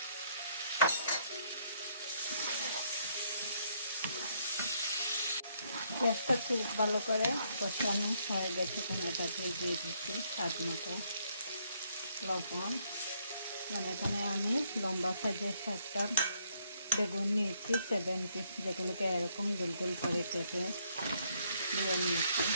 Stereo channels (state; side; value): inverted; both; correlation -0.70